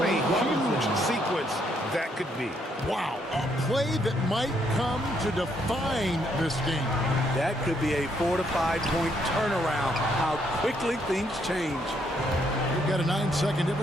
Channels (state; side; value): normal; both; correlation 0.73